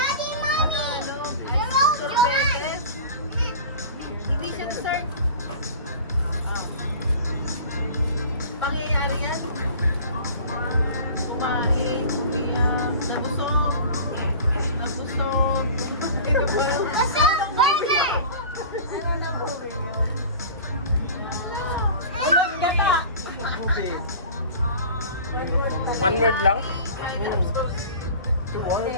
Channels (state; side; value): inverted; both; correlation -0.39